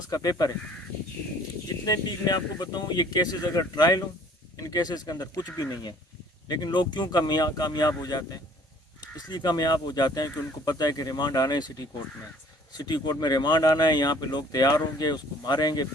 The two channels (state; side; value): normal; both; correlation 0.54